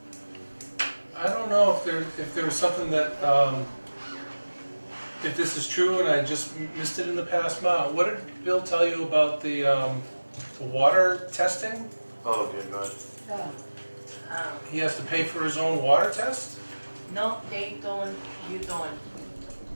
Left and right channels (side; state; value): both; inverted; correlation -1.00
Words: I don't know if there was something that, if this is true and I just missed it in the past month. What did Bill tell you about the water testing? Oh, good, good. He has to pay for his own water test? No, they don't, you don't.